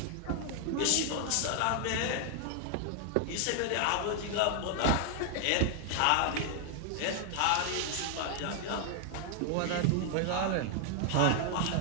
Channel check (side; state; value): both; different; correlation 0.00